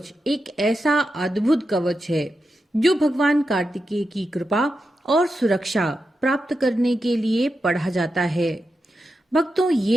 एक ऐसा अद्भुत कवच है जो भगवान कार्तिकेय की कृपा और सुरक्षा प्राप्त करने के लिए पढ़ा जाता है। भक्तों,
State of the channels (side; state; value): both; normal; correlation 0.89